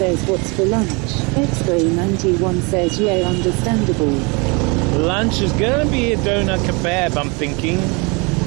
what's for lunch? X-Ray 91 says, yeah, understandable. Lunch is going to be a doner kebab, I'm thinking.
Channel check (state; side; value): quieter; left; 29.8 dB